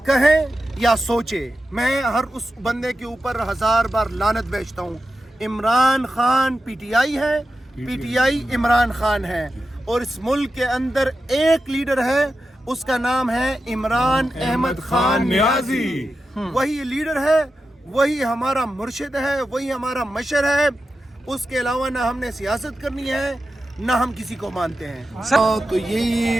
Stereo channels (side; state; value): both; normal; correlation 0.91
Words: कहे या सोचे। मैं हर उस बंदे के ऊपर 1000 बार लानत बेचता हूँ। इमरान खान पीटीआई है, पीटीआई इमरान खान है, और इस मुल्क के अंदर एक लीडर है, उसका नाम है इमरान अहमद खान नियाजी। वही लीडर है, वही हमारा मुर्शिद है, वही हमारा मशर है। उसके अलावा ना हमने सियासत करनी है, ना हम किसी को मानते हैं। तो